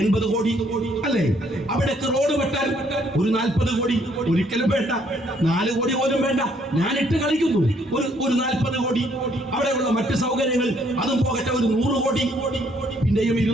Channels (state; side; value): normal; both; correlation 0.67